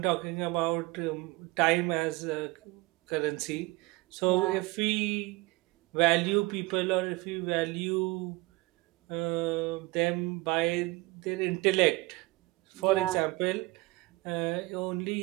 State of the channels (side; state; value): left; quieter; 22.4 dB